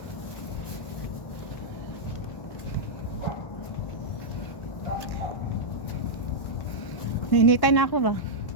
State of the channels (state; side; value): late; right; 1.1 ms